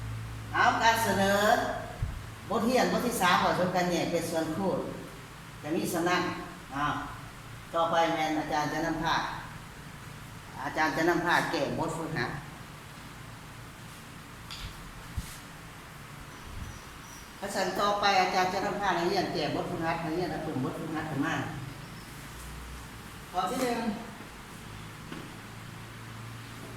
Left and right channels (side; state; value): both; identical; correlation 1.00